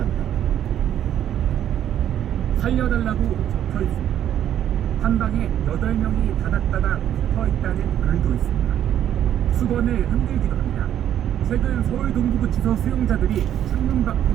살려달라고 적혀 있습니다. 한 방에 8명이 다닥다닥 붙어 있다는 글도 있습니다. 수건을 흔들기도 합니다. 최근 서울 동부구치소 수용자들이 창문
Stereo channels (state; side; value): quieter; left; 10.6 dB